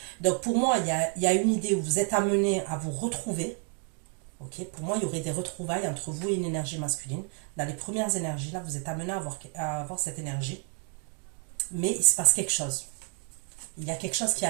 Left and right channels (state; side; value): quieter; left; 39.8 dB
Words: Donc pour moi, il y a une idée où vous êtes amené à vous retrouver. Ok, pour moi, il y aurait des retrouvailles entre vous et une énergie masculine. Dans les premières énergies, là, vous êtes amené à avoir cette énergie. Mais il se passe quelque chose. Il y a quelque chose qui